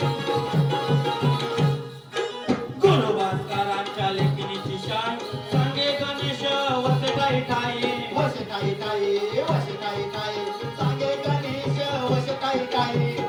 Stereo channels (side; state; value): both; identical; correlation 1.00